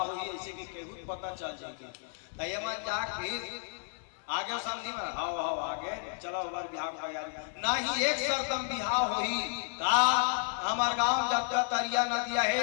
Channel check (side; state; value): right; silent; digital silence